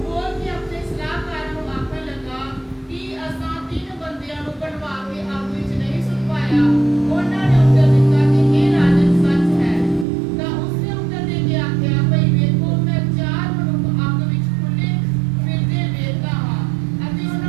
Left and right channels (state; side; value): drops out; left; at 10.1 s